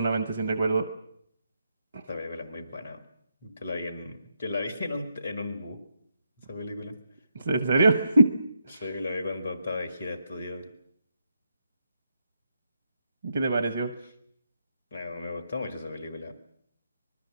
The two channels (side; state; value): both; inverted; correlation -0.81